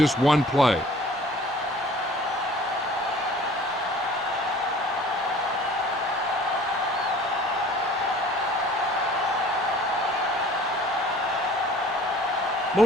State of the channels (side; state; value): both; normal; correlation 0.49